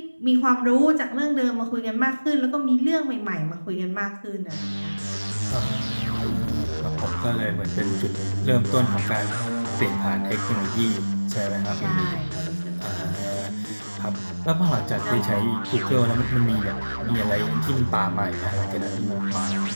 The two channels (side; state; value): both; inverted; correlation -1.00